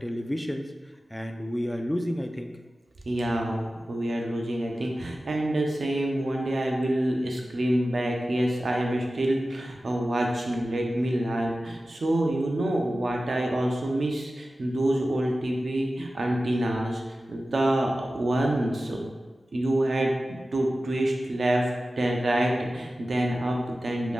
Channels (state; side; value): normal; both; correlation 0.95